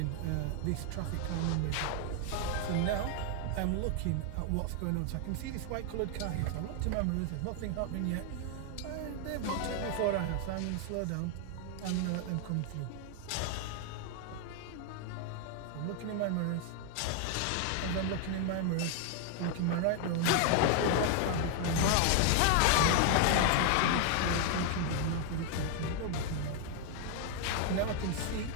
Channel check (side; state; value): both; different; correlation 0.00